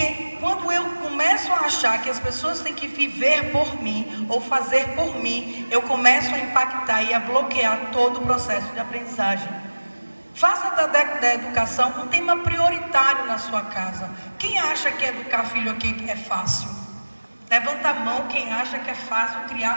quando eu começo a achar que as pessoas têm que viver por mim ou fazer por mim, eu começo a impactar e a bloquear todo o processo de aprendizagem. Faça da educação um tema prioritário na sua casa. Quem acha que educar filho aqui é fácil? Levanta a mão quem acha que é fácil criar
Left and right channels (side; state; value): both; inverted; correlation -1.00